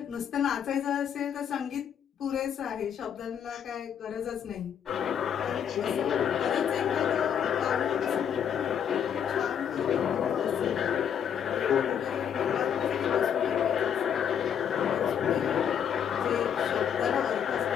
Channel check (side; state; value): right; quieter; 8.5 dB